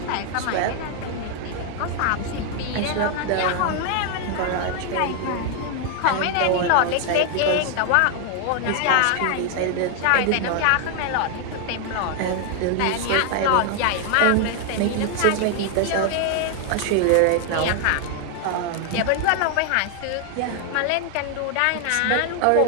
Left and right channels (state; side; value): different; both; correlation 0.00